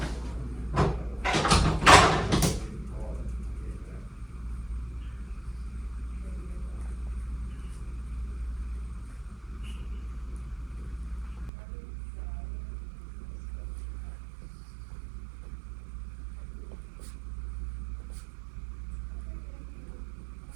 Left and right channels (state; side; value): drops out; left; at 11.5 s